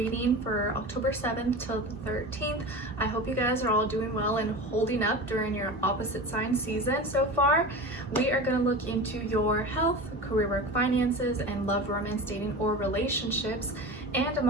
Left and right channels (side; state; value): both; normal; correlation 0.30